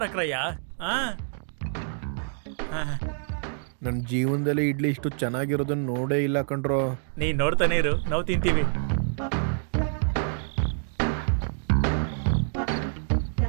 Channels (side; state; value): left; silent; 60 dB below the other